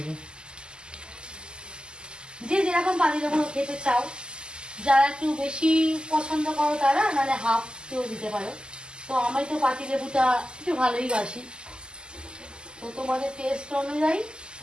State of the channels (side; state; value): left; late; 0.047 ms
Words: যে যেরকম পাতিলেবু খেতে চাও, যারা একটু বেশি পছন্দ করো তারা, নাহলে হাফ কেউ দিতে পারো। তো আমি তো পাতিলেবুটা একটু ভালোই বাসি, তো তোমাদের টেস্ট অনুযায়ী